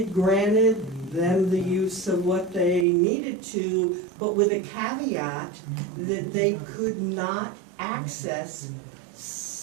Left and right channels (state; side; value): drops out; left; at 2.9 s